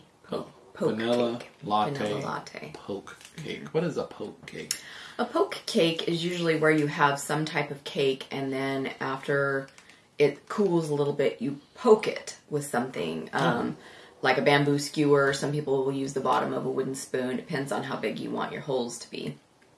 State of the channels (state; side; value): identical; both; correlation 1.00